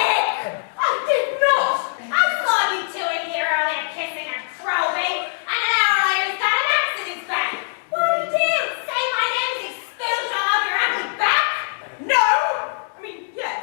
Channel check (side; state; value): right; silent; digital silence